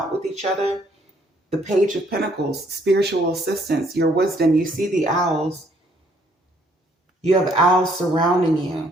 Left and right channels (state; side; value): normal; both; correlation 0.66